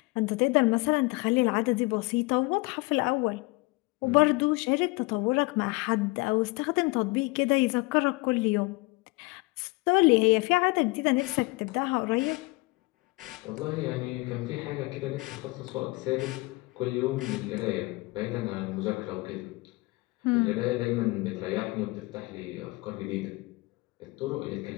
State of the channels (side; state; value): right; quieter; 24.2 dB